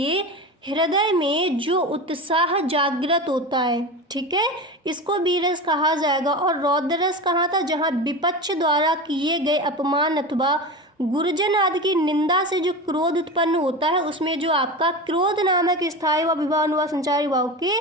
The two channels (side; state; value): both; normal; correlation 0.27